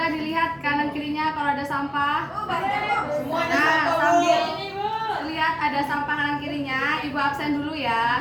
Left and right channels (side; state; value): both; identical; correlation 1.00